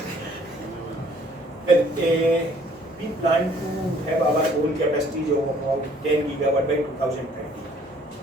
Well, we plan to have our own capacity of about 10 gigawatt by 2030.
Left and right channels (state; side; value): normal; both; correlation 0.59